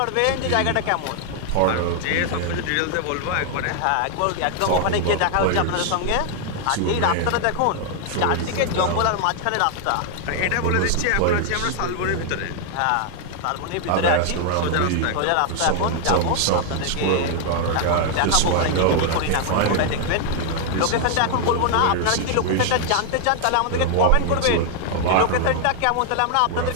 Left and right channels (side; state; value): both; different; correlation 0.00